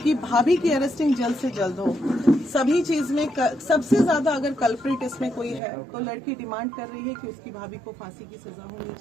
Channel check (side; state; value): left; drops out; at 5.6 s